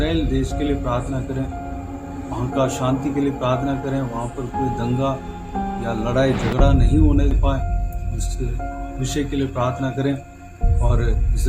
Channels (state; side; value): identical; both; correlation 1.00